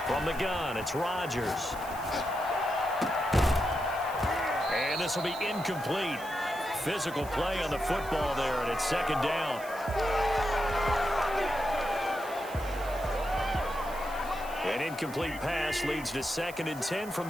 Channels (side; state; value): right; noise; hiss, 17 dB below the sound